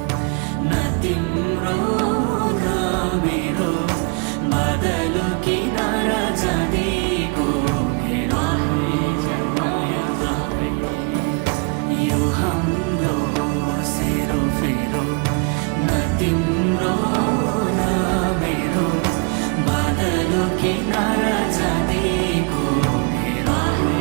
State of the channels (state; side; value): quieter; left; 32.7 dB